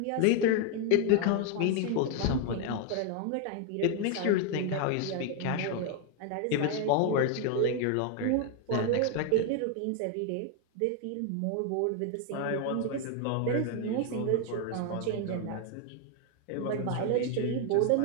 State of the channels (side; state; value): both; different; correlation 0.01